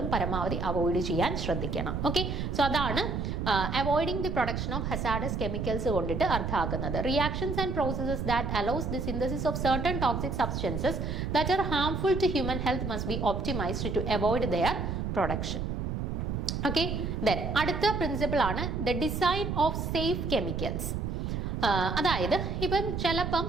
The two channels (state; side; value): noise; right; rumble, 2 dB below the sound